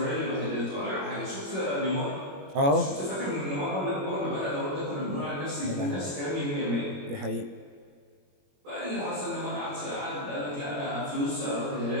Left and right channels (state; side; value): late; left; 21 ms